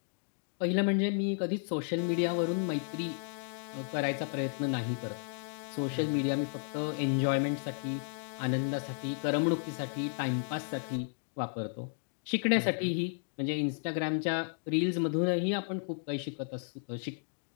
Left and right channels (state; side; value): silent; right; digital silence